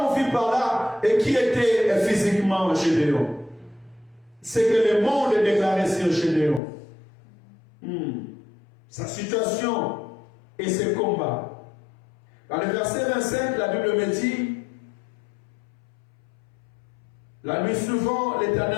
mon fils par là, et qui était physiquement Gédéon? C'est que le monde est déclaré sur Gédéon. Sa situation et ses combats. Dans le verset 25, la Bible me dit, la nuit suivante,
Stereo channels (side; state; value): right; drops out; at 6.6 s